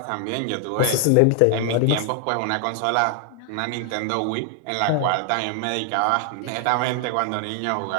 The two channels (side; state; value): both; different; correlation 0.00